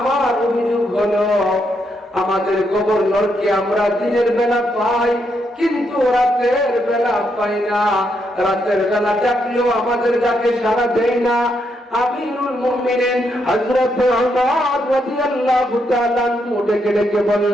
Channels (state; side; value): normal; both; correlation 0.79